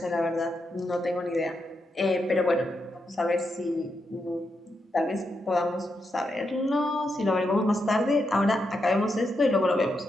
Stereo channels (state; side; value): normal; both; correlation 0.83